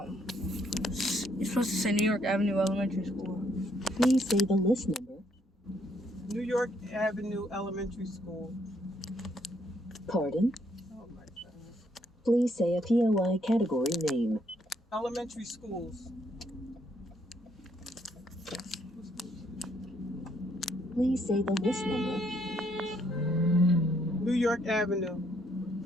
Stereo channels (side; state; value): both; normal; correlation 0.70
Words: You're supposed to say New York Avenue Elementary School. Please say the list number. New York Avenue Elementary School. Pardon? Oh my goodness. Please say a POI category name. Elementary schools. Please say the list number. New York Avenue.